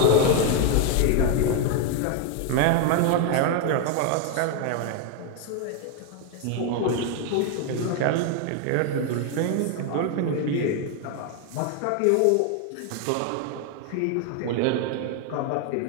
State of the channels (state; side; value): different; both; correlation 0.01